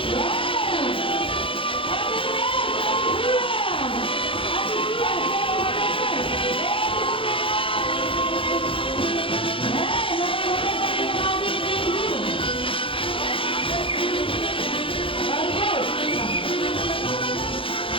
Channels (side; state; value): right; late; 0.26 ms